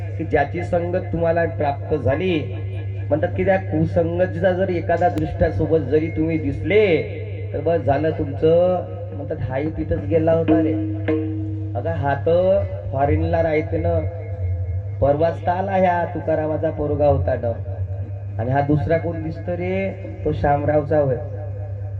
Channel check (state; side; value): identical; both; correlation 1.00